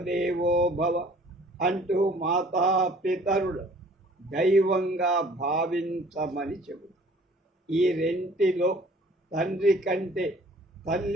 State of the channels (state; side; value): normal; both; correlation 0.53